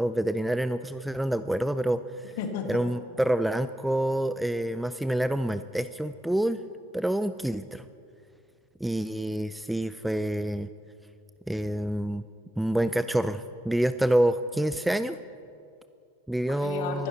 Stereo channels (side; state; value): both; normal; correlation 0.91